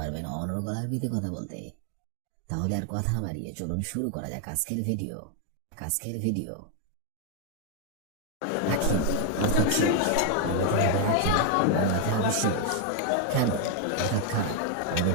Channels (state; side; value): different; both; correlation 0.01